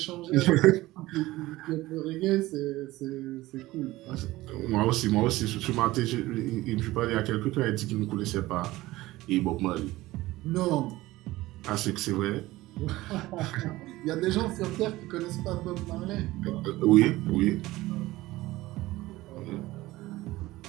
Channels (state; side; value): quieter; left; 18.0 dB